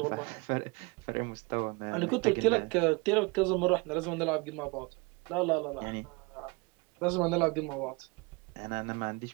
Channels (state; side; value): quieter; left; 28.2 dB